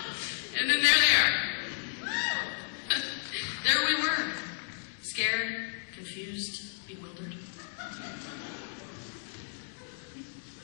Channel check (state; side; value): silent; right; digital silence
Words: And then there they are. There we were, scared, confused, bewildered.